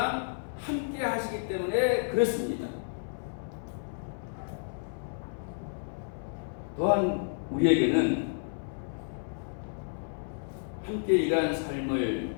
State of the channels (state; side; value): silent; right; 57 dB below the other